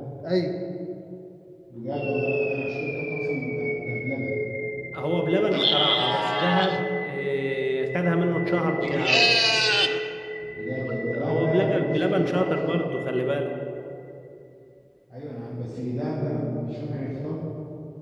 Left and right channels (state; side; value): identical; both; correlation 1.00